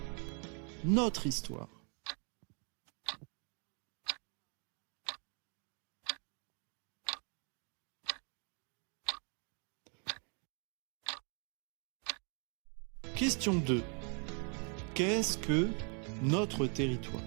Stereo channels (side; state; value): left; quieter; 38.8 dB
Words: Notre histoire. Question 2. Qu'est-ce que notre territoire?